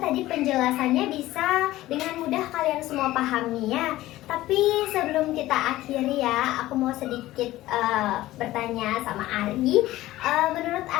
penjelasannya bisa dengan mudah kalian semua pahami ya. Tapi sebelum kita akhiri ya, aku mau sedikit bertanya sama Ari. Menurut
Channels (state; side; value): quieter; right; 16.2 dB